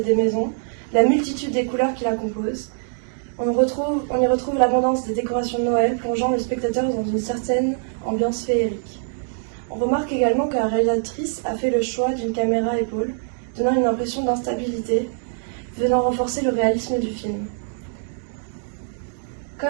des maisons, la multitude des couleurs qui la composent. On y retrouve l'abondance des décorations de Noël, plongeant le spectateur dans une certaine ambiance féerique. On remarque également que la réalisatrice a fait le choix d'une caméra à épaule, donnant une impression d'instabilité, venant renforcer le réalisme du film.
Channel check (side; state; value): left; silent; digital silence